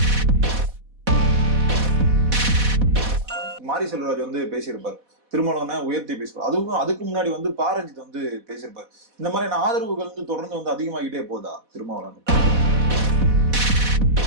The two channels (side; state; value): left; late; 4.1 ms